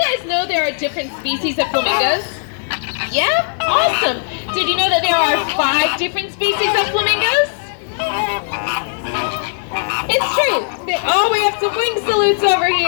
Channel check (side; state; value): right; silent; 68 dB below the other